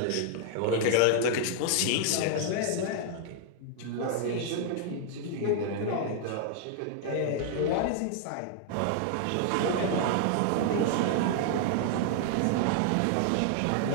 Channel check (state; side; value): different; both; correlation 0.00